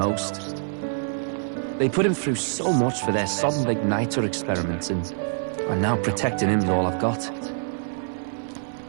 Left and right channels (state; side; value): silent; left; 60 dB below the other